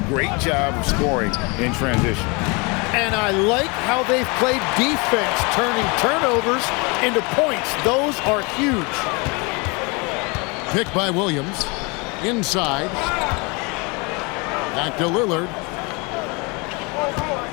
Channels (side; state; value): right; quieter; 29.3 dB